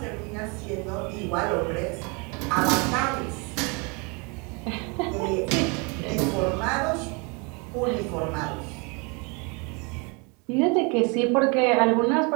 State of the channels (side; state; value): left; quieter; 31.4 dB